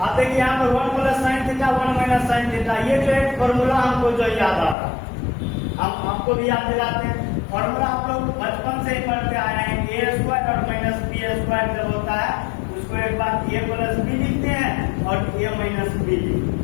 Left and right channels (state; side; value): drops out; right; at 4.8 s